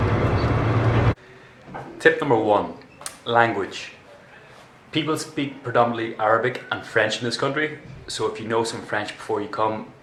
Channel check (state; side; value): identical; both; correlation 1.00